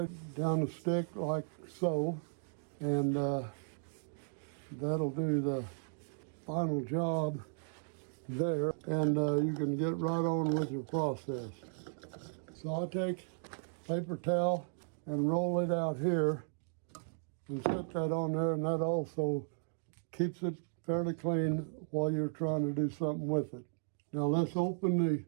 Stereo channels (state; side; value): silent; left; digital silence